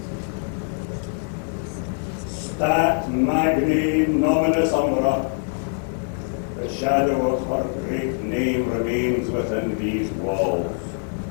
Stat magni nominis umbra, the shadow of her great name remains within these walls.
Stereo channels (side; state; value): right; silent; 63 dB below the other